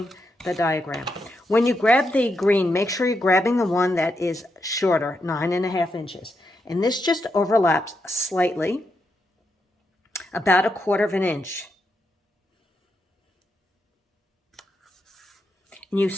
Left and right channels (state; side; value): normal; both; correlation 0.83